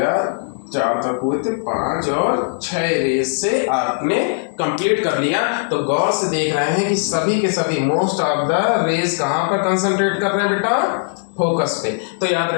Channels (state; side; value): silent; right; digital silence